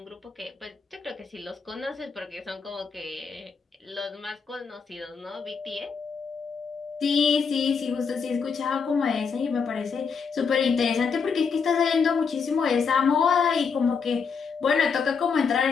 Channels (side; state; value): right; quieter; 5.7 dB